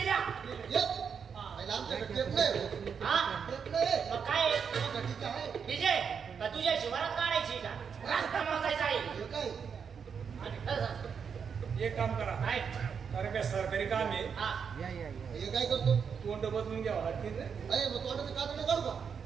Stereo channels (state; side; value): quieter; left; 6.6 dB